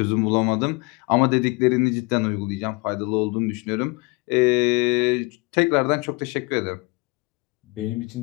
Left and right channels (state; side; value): quieter; right; 27.1 dB